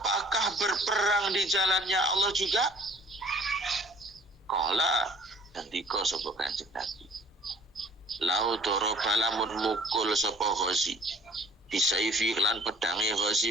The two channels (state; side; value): normal; both; correlation 0.52